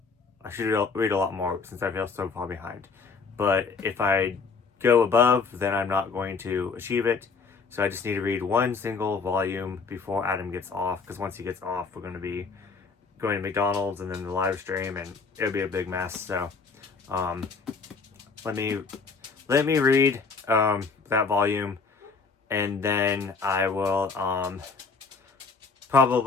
I should read a lot more since I feel so far behind. But if I go above, then I'm not going to achieve it. So I just need to read 1 single volume before Adam gets off. Because once he gets off, we're going to be going to McDonald's and then the live stream, and it'll be a big mess. So let me read that volume, and then I will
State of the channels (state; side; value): quieter; right; 4.8 dB